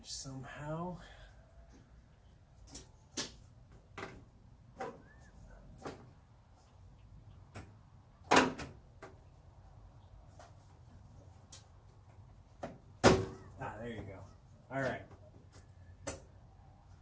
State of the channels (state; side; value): identical; both; correlation 1.00